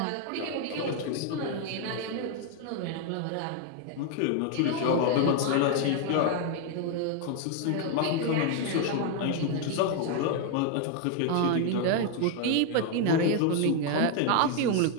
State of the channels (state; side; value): different; both; correlation 0.01